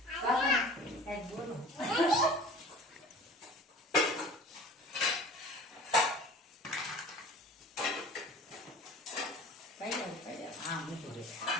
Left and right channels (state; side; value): normal; both; correlation 0.42